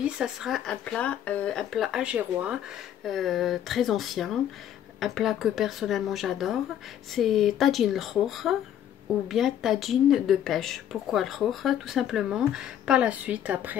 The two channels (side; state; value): right; quieter; 10.4 dB